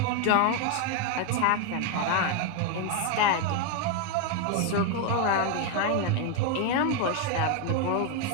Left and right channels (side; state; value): both; different; correlation 0.01